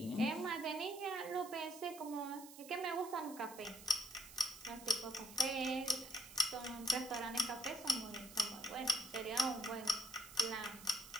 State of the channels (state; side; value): noise; right; hiss, 16 dB below the sound